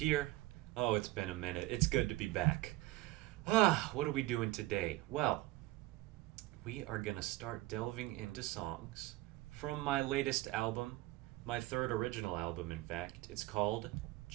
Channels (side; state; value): left; quieter; 18.1 dB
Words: Oh, it's been a minute. It's good to be back. What are we doing today? Well, we are gonna start delving into songs from my latest album, my third original album, in fact. It's called